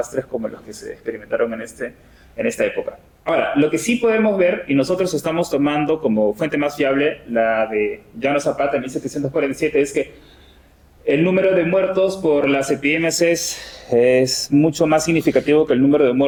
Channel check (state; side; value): identical; both; correlation 1.00